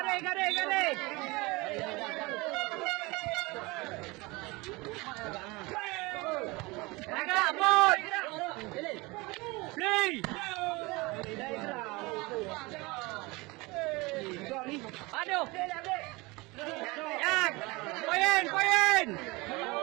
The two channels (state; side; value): quieter; left; 24.1 dB